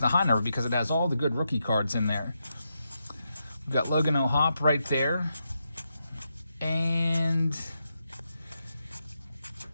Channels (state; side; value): inverted; both; correlation -0.84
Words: high number because it has all the good rookie cards in there. We've got Logan O'Hoppe right there. And